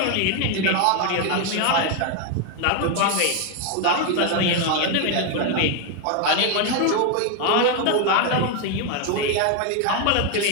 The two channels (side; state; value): both; different; correlation 0.01